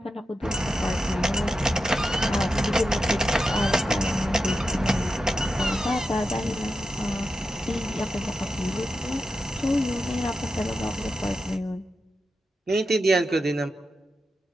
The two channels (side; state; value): both; normal; correlation 0.88